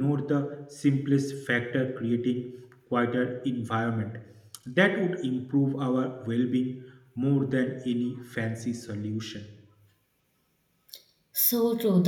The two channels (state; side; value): identical; both; correlation 1.00